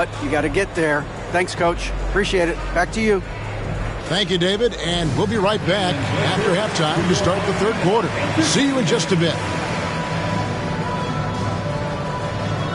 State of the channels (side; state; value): both; identical; correlation 1.00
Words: you got to get there. Thanks, Coach. Appreciate it. Back to you. Thank you, David, and we'll be right back after halftime to start the third quarter. See you in just a bit.